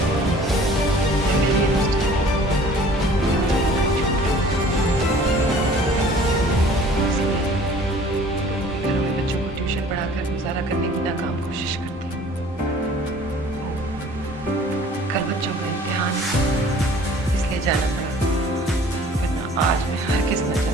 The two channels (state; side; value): normal; both; correlation 0.50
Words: घरों में बच्चों को ट्यूशन पढ़ाकर गुजारा करने की नाकाम कोशिश करती हूँ। कल बच्चों का इम्तिहान है, इसलिए जाना पड़ा, वरना आज मैं हरगिज़ न